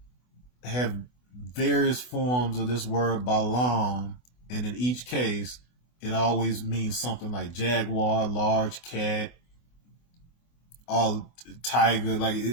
have various forms of this word Balaam, and in each case, it always means something like jaguar, large cat, all tiger, like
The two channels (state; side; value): late; right; 24 ms